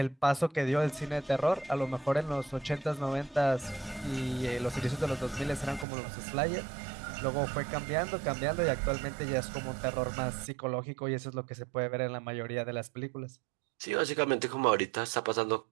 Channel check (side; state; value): left; drops out; at 5.9 s